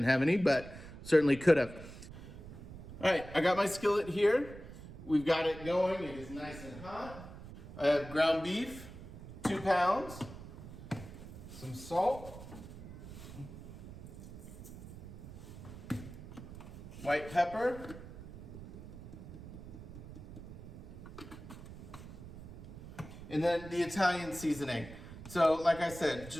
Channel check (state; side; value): noise; right; rumble, 13 dB below the sound